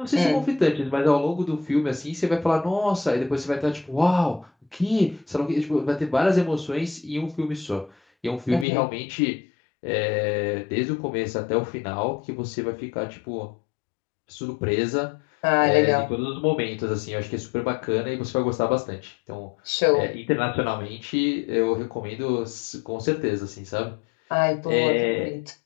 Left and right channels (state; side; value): drops out; right; at 8.7 s